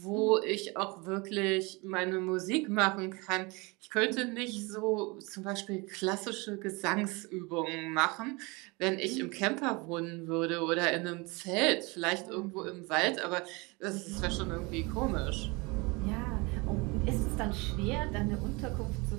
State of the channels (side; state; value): left; quieter; 26.7 dB